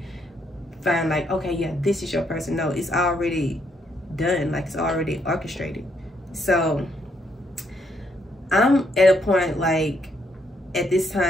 find like, okay, yeah, this is your person. No, it's already done. Like it's already orchestrated. So I'm at a point like at this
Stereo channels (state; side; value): normal; both; correlation 0.74